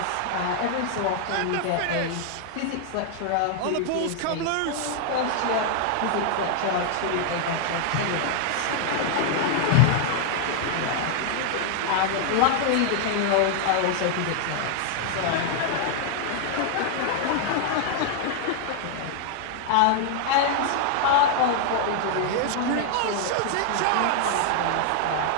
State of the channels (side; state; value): both; different; correlation 0.00